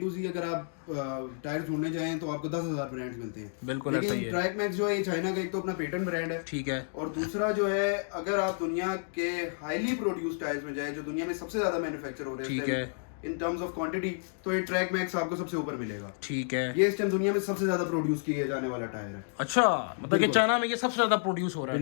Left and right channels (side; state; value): right; silent; digital silence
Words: to Z अगर आप टायर ढूंढने जाएं तो आपको 10,000 ब्रांड्स मिलते हैं। बिल्कुल ऐसा ही लेकिन है। ट्रैक मैक्स जो है ये चाइना का एक तो अपना पेटेंट ब्रांड है, ठीक है। और दूसरा जो है अगर आप दुनिया के हाईली प्रोड्यूस टायर्स में जाए, जो दुनिया में सबसे ज्यादा मैन्युफैक्चर हो रहे हैं, ठीक है। इन टर्म्स ऑफ क्वांटिटी, तो ये ट्रैक मैक्स आपको सबसे ऊपर मिलेगा। ठीक है। ये इस टाइम दुनिया में सबसे ज्यादा प्रोड्यूस किए जाने वाला टायर है। अच्छा, मतलब कि चाइना में ये सबसे ज्यादा प्रोड्यूस हो रहा है